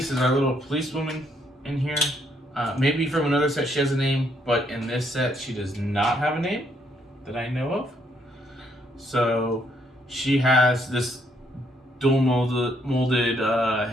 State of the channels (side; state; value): both; normal; correlation 0.71